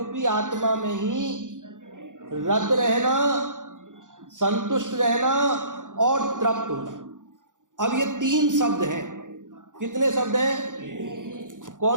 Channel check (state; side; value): late; left; 0.87 ms